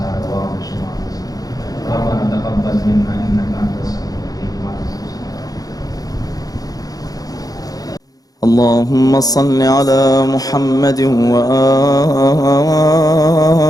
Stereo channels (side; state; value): right; late; 0.18 ms